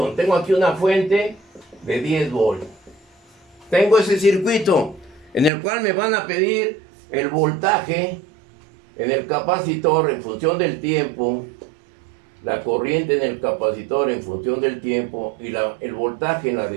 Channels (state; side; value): drops out; left; at 5.5 s